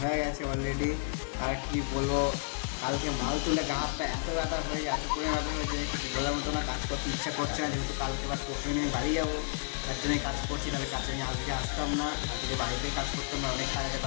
হয়ে গেছে অলরেডি। আর কি বলবো, কালকে মাল তুলে গা হাত পা এত ব্যথা হয়ে এত পরিমাণে ব্যথা হয়েছে কিছু বলার মতো না। কাজ করতে ইচ্ছা করছে না, যেহেতু কালকে আবার পরশু দিনে বাড়ি যাবো, তার জন্যই কাজ করছি। তাহলে কাজে আমি আজকে আসতাম না, আজকে বাড়িতেই কাজ করতাম না। অনেক কাজ আছে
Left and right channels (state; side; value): silent; right; 57 dB below the other